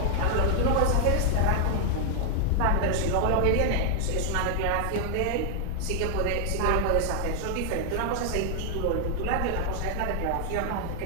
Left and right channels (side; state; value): both; different; correlation -0.01